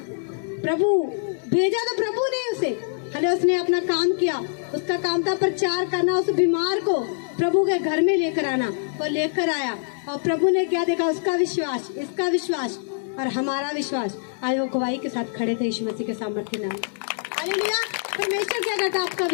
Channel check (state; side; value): silent; right; digital silence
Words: प्रभु भेजा तो प्रभु ने उसे। हालेलुया। उसने अपना काम किया, उसका काम था प्रचार करना, उस बीमार को प्रभु के घर में लेकर आना, और लेकर आया, और प्रभु ने क्या देखा, उसका विश्वास, इसका विश्वास और हमारा विश्वास, आज वो गवाही के साथ खड़े थे यीशु मसीह के सामर्थ्य नाम। हालेलुया। परमेश्वर क्या करता है, आपका